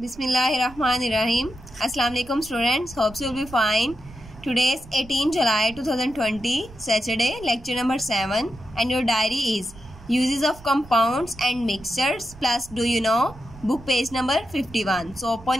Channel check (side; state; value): right; noise; rumble, 19 dB below the sound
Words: Assalamu alaikum students. Hope you will be fine. Today is 18 July 2020, Saturday, lecture number 7, and your diary is uses of compounds and mixtures plus do you know, book page number 51. So open